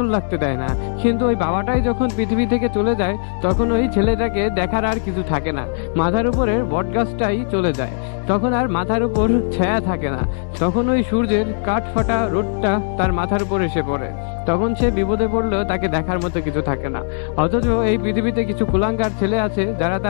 লাগতে দেয় না, কিন্তু ওই বাবাটাই যখন পৃথিবী থেকে চলে যায় তখন ওই ছেলেটাকে দেখার আর কিছু থাকে না। মাথার উপরের বটগাছটাই চলে যায়, তখন আর মাথার উপর ছায়া থাকে না, তখন ওই সূর্যের কাঠ ফাটা রোদটা তার মাথার উপর এসে পড়ে, তখন সে বিপদে পড়লেও তাকে দেখার মতো কিছু থাকে না। অথচ এই পৃথিবীতে কিছু কুলাঙ্গার ছেলে আছে যারা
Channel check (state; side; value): silent; right; digital silence